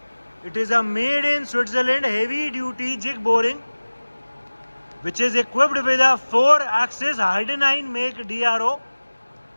It is a made in Switzerland heavy duty jig boring which is equipped with a 4-axis Heidenhain make DRO.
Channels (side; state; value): both; inverted; correlation -1.00